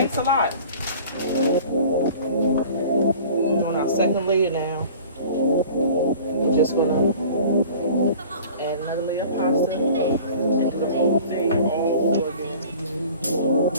a lot. We're doing our second layer now. We're just gonna add another layer of pasta and do the whole thing all over again. Do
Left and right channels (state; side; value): inverted; both; correlation -0.45